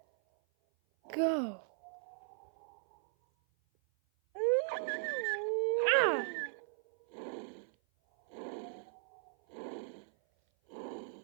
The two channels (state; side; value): silent; left; 53 dB below the other